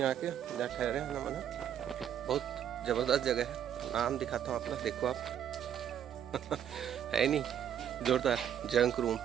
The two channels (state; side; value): quieter; left; 9.5 dB